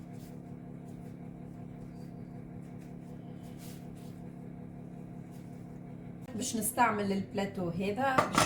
باش نستعمل البلاتو هذا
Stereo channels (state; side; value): identical; both; correlation 1.00